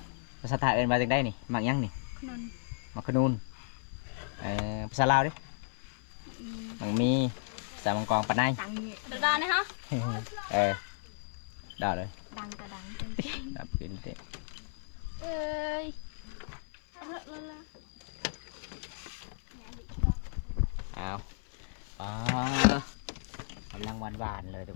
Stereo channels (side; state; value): right; silent; 55 dB below the other